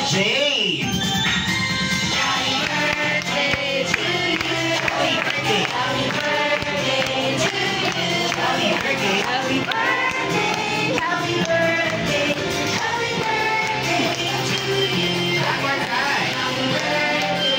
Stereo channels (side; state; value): both; identical; correlation 1.00